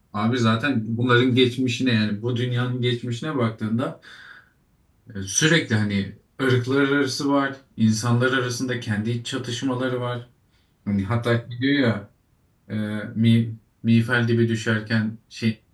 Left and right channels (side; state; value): both; identical; correlation 1.00